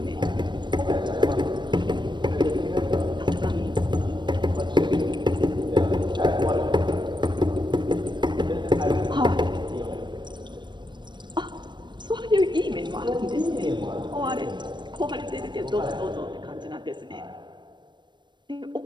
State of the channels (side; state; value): left; late; 0.22 ms